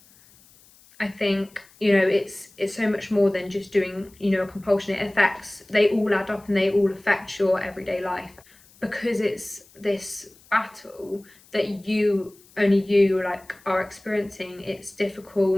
I think, you know, it's so much more than just doing, you know, a compulsion. They all add up and they all affect your everyday life because it's this battle that only you like are experiencing. It's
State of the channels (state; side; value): noise; left; hiss, 27 dB below the sound